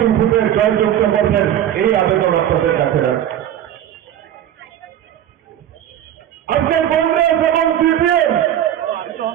ভোটে জয়যুক্ত করবেন, এই আবেদন আপনাদের কাছে রাখছি। আজকে কংগ্রেস এবং সিপিএম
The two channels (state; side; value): quieter; left; 11.0 dB